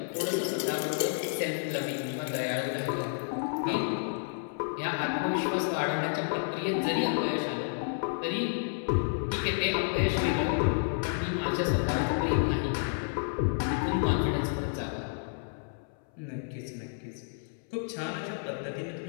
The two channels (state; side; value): silent; right; 57 dB below the other